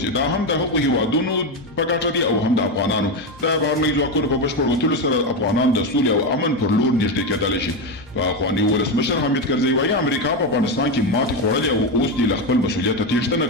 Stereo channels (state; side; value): normal; both; correlation 0.12